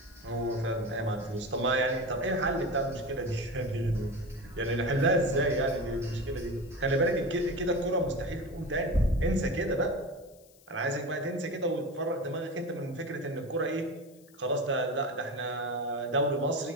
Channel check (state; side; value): noise; left; hiss, 27 dB below the sound